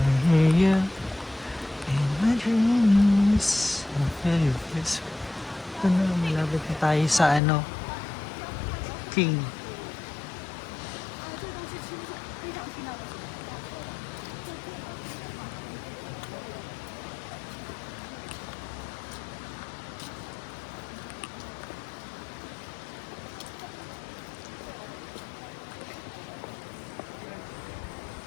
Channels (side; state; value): right; drops out; at 7.4 s